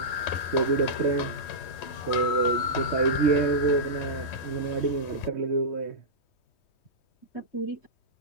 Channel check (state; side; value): late; right; 3.2 ms